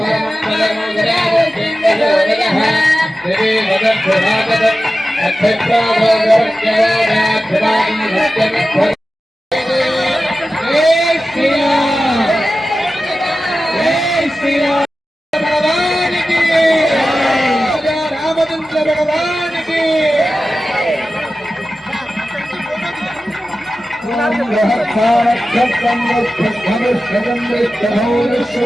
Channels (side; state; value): both; normal; correlation 0.94